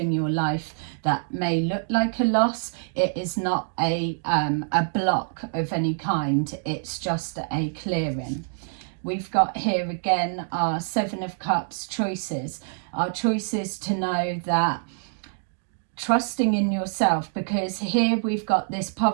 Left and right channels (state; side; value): silent; left; digital silence